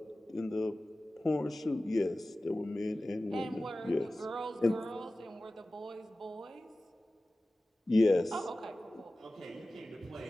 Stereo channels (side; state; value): both; normal; correlation 0.96